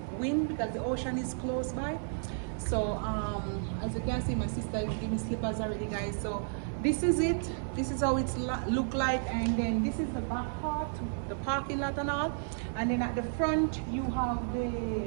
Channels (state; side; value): silent; left; 56 dB below the other